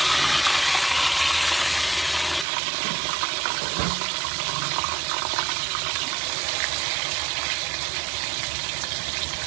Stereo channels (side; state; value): left; drops out; at 2.5 s